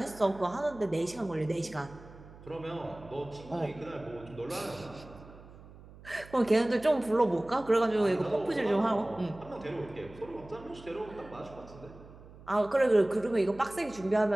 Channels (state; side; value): noise; right; hum, 19 dB below the sound